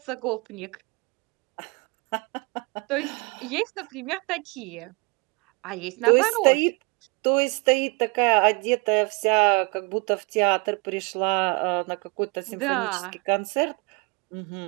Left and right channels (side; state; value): left; quieter; 30.3 dB